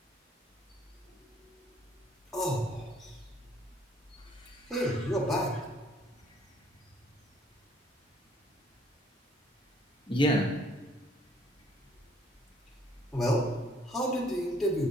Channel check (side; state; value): both; normal; correlation 0.62